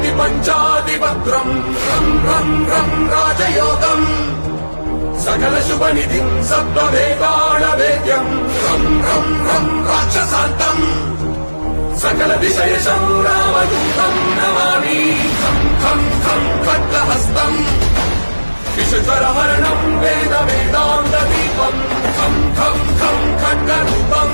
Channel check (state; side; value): inverted; both; correlation -1.00